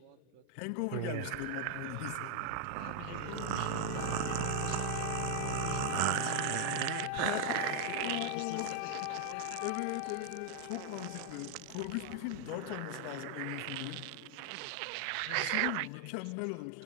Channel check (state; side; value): different; both; correlation 0.00